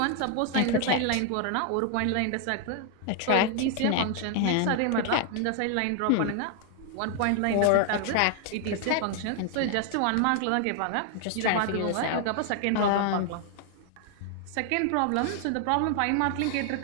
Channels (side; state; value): both; different; correlation 0.00